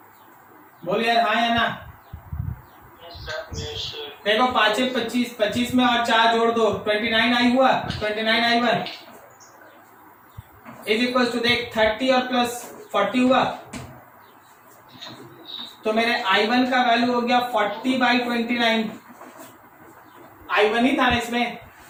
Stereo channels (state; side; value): identical; both; correlation 1.00